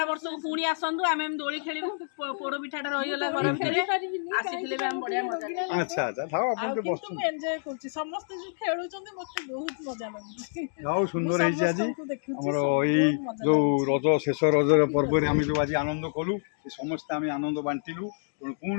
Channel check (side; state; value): right; silent; digital silence